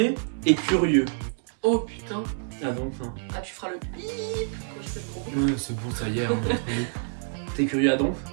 et curieux. Oh putain. Ah donc ça. Ah tu feras le bip quand je fais le gros. Non, c'est bon, ça y est. Hein, t'es curieux à donf?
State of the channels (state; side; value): silent; left; digital silence